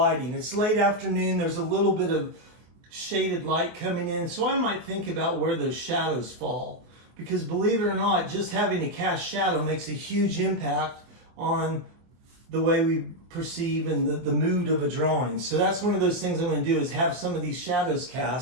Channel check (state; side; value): late; left; 23 ms